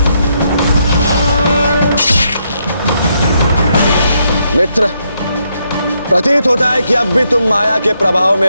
मित्र, प्रतीत होता है कि अब भी तुम माया के प्रभाव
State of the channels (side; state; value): both; inverted; correlation -0.77